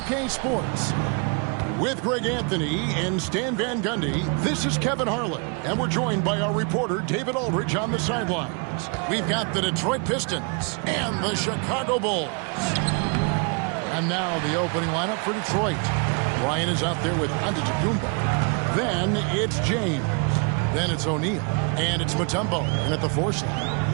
Sports. With Greg Anthony and Stan Van Gundy, this is Kevin Harlan, and we're joined by our reporter, David Aldridge, on the sidelines. We've got the Detroit Pistons and the Chicago Bulls. And now the opening lineup for Detroit. Ryan is out there with Antetokounmpo. Then it's James. Then it's O'Neal. And it's Mutombo in at the 4 slot.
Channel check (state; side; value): quieter; left; 36.3 dB